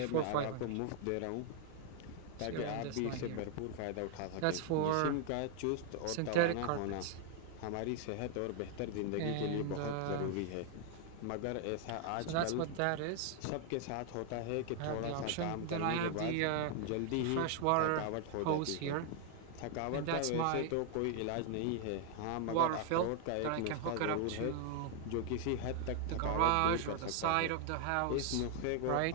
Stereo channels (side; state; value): both; different; correlation 0.00